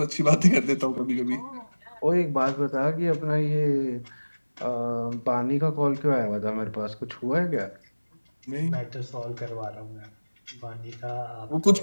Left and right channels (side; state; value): both; inverted; correlation -1.00